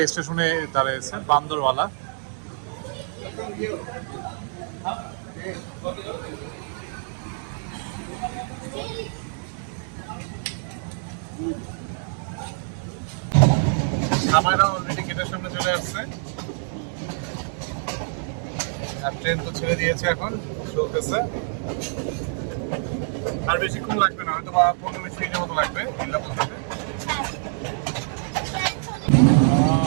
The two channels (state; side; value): silent; left; 61 dB below the other